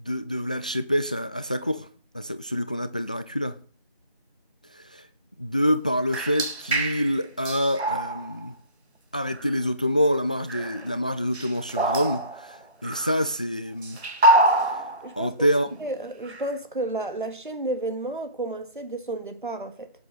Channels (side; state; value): both; inverted; correlation -0.51